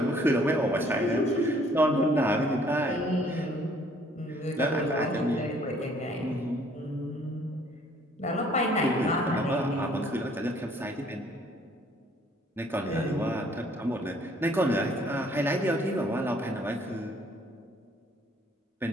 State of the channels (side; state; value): both; normal; correlation 0.60